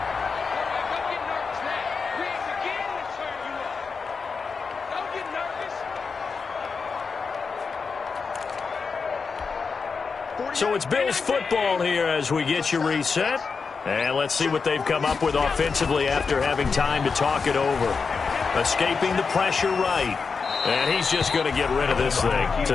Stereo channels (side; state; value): right; quieter; 5.1 dB